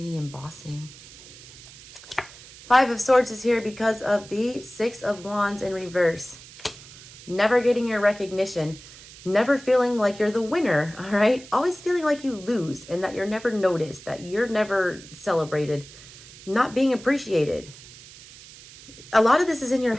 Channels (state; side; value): noise; right; hiss, 19 dB below the sound